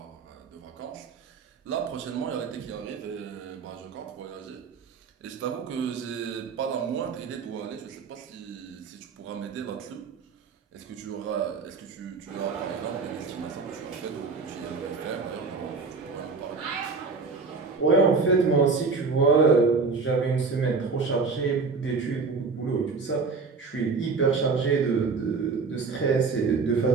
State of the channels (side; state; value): left; quieter; 4.6 dB